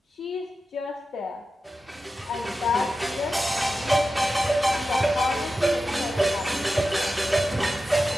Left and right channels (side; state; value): both; normal; correlation 0.92